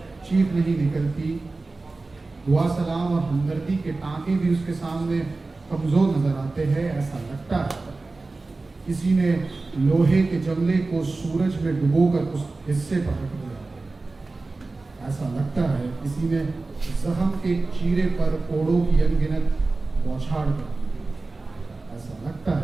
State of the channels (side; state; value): left; quieter; 3.5 dB